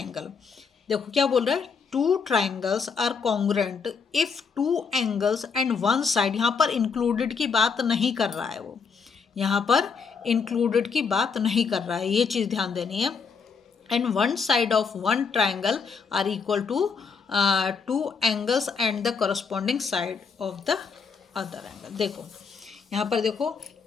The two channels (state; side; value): quieter; right; 5.5 dB